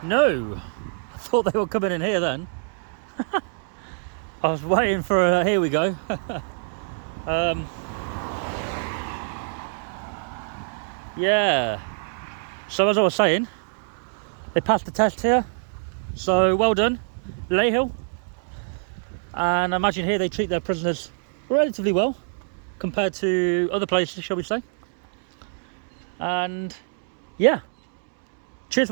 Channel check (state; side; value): silent; left; digital silence